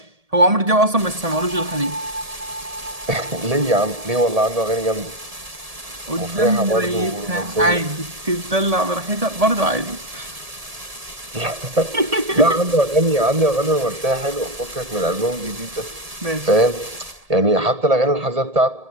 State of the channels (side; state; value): left; late; 1.8 ms